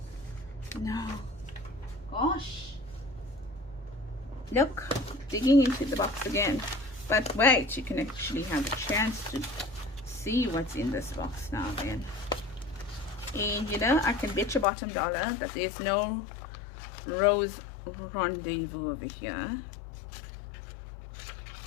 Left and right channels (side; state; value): right; drops out; at 14.7 s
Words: no, gosh, look, digging into the box again. But wait, you can actually have a chance to see what's in this box now then. And you know, I can bet your bottom dollar that there's no rose rendezvous over here.